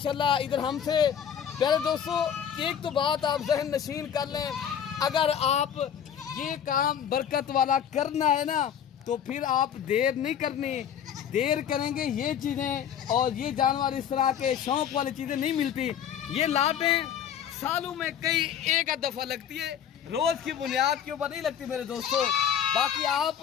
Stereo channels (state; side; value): quieter; right; 8.9 dB